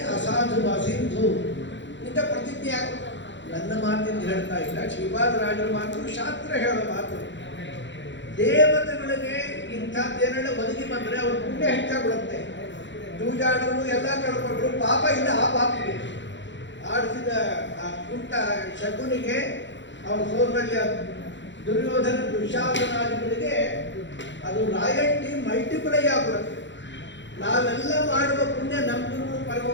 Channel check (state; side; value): late; right; 0.53 ms